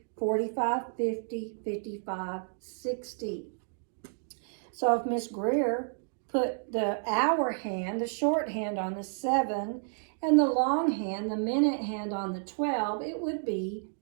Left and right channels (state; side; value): silent; left; digital silence